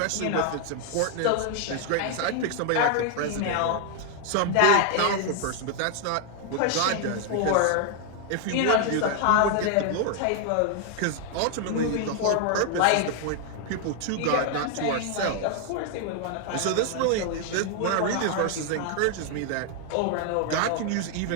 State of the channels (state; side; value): different; both; correlation 0.00